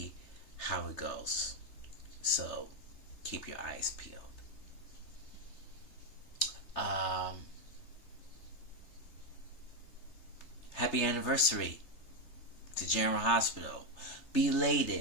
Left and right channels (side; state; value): right; late; 3.4 ms